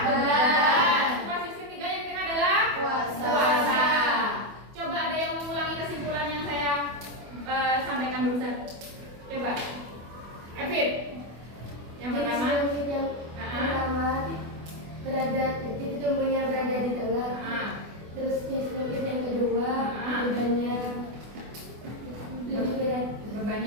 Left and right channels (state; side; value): late; left; 24 ms